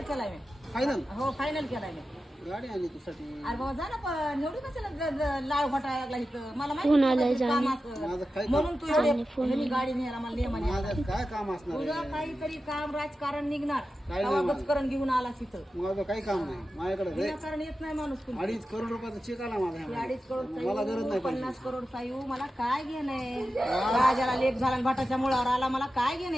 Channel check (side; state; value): both; normal; correlation 0.92